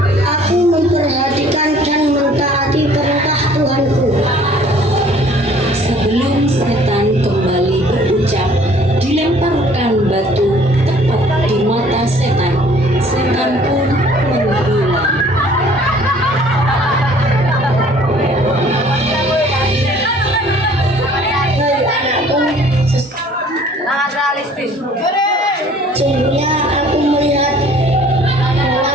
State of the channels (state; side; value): normal; both; correlation 0.54